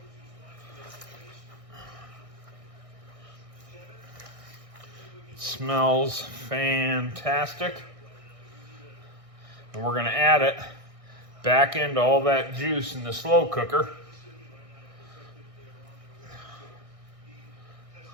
It smells fantastic. And we're going to add it back into all that juice in the slow cooker.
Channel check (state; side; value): late; left; 1.6 ms